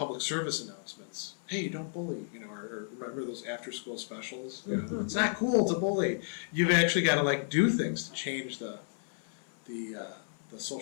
service announcements. Hey, don't bully, or remember those after-school specials? It's not cool to bully. You've actually got to do things to change the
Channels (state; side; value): silent; right; 56 dB below the other